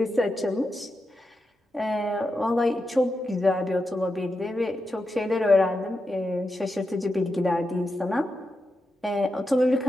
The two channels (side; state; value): both; normal; correlation 0.88